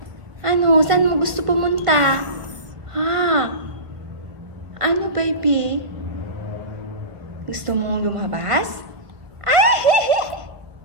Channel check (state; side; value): late; left; 1.5 ms